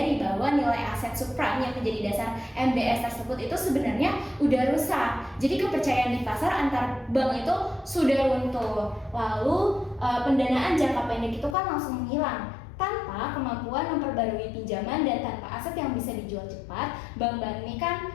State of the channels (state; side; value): drops out; right; at 11.6 s